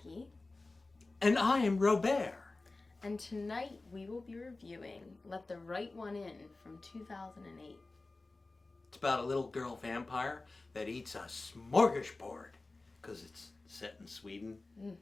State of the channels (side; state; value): right; quieter; 3.3 dB